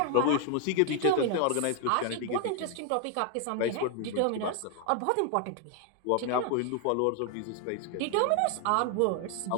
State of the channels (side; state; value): both; different; correlation 0.00